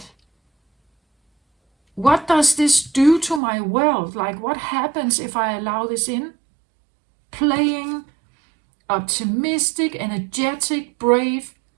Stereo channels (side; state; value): left; drops out; at 3.4 s